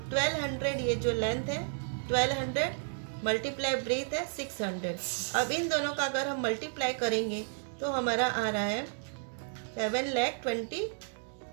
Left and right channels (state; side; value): silent; left; digital silence